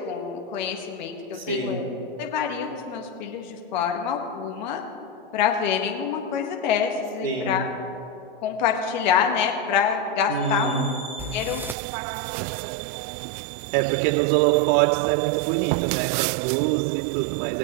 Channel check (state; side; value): drops out; left; at 11.8 s